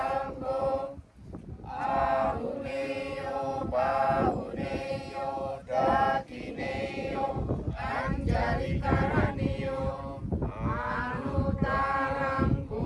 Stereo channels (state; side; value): identical; both; correlation 1.00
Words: Ahuneyo Bahuneyo Dakineyo Anjali Karaniyo Anutarang